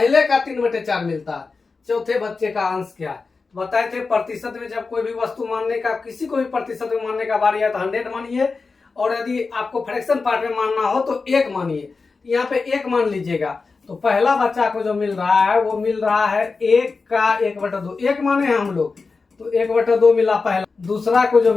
का 3/4 मिलता है, चौथे बच्चे का अंश क्या है। बताए थे प्रतिशत में जब कोई भी वस्तु मानने का, किसी को भी प्रतिशत में मानने का बारी है तो 100 मानिए, और यदि आपको फ्रैक्शन पार्ट में मानना हो तो 1 मानिए। यहाँ पे 1 मान लीजिएगा, तो पहला बच्चा को जो मिल रहा है वो मिल रहा है 1 का 1/2, 1 माने हैं हम लोग, तो 1/2 मिला पहला। दूसरा को जो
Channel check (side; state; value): right; quieter; 4.3 dB